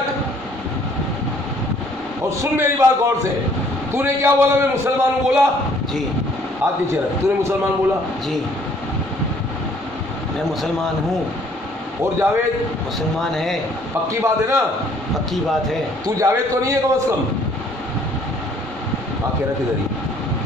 اور سن میری بات غور سے. تو نے کیا بولا؟ میں مسلمان ہوں بولا؟ جی. ہاتھ نیچے رکھ. تو نے مسلمان بولا؟ جی میں مسلمان ہوں. اور جاوید مسلمان ہے. پکی بات ہے نا؟ پکی بات ہے. تو جاوید تو نہیں ہے کم از کم؟ آنکھیں رکھ ادھر ہی,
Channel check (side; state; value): both; normal; correlation 0.60